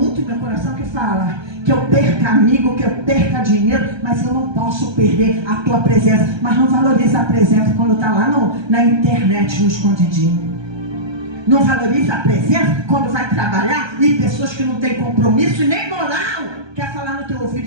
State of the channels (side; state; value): left; late; 1.2 ms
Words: no meu coração, que fala que eu perca amigo, que eu perca dinheiro, mas eu não posso perder a tua presença. Mas não valoriza a presença quando está lá na internet, no escondidinho. Não valoriza a presença quando vai trabalhar e pessoas que não têm compromisso e nem moral quer falar no teu